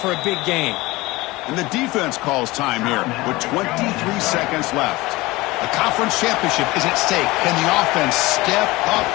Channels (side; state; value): right; quieter; 20.8 dB